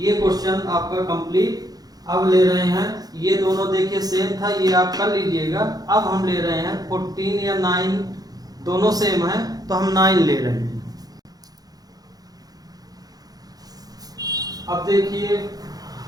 क्वेश्चन आपका कंप्लीट। अब ले रहे हैं, ये दोनों देखिए सेम था, ये आप कर लीजिएगा। अब हम ले रहे हैं 14 या 9, दोनों सेम है, तो हम 9 ले रहे हैं। अब देखिए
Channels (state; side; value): late; left; 0.19 ms